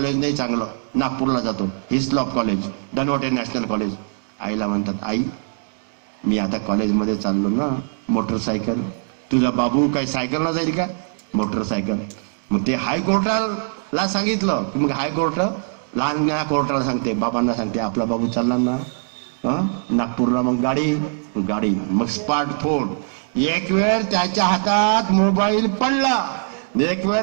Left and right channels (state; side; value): silent; left; digital silence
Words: नाही चांगलं, नागपूरला जातो, Hislop college, Dhanwate national college. आईला म्हणतात आई मी आता कॉलेजमध्ये चाललो ना, मोटरसायकल. तुझा बाबू काही सायकलला जाईल का? मोटरसायकल. मग ते हायकोर्टाला सांगितलं की मग हायकोर्ट लहान कोर्टाला सांगते, बाबांना सांगते आपला बाबू चालणार ना नागपूरला, मग गाडी, मग स्मार्टफोन. एक वेळ त्याच्या हातात मोबाईल पडला, एक